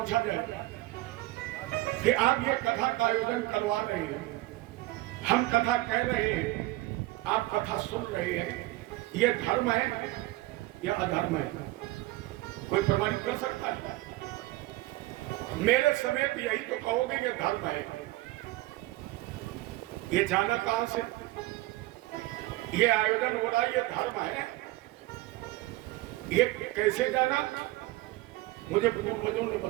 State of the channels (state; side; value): quieter; left; 18.8 dB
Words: जाए कि आप ये कथा का आयोजन करवा रहे हैं, हम कथा कह रहे हैं, आप कथा सुन रहे हैं, ये धर्म है या अधर्म है? कोई प्रमाणित कर सकता है? मेरे समेत यही तो कहोगे ये धर्म है। ये जाना कहां से? ये आयोजन हो रहा है, ये धर्म है, ये कैसे जाना? मुझे पूर्वजों ने